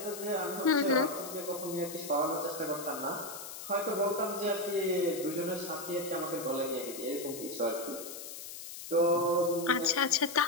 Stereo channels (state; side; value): noise; left; hiss, 11 dB below the sound